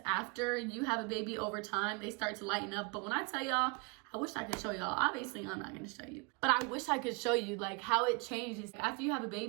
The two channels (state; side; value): quieter; left; 30.9 dB